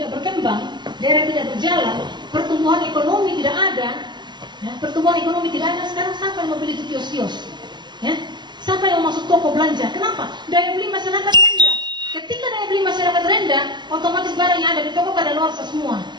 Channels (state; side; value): late; left; 0.22 ms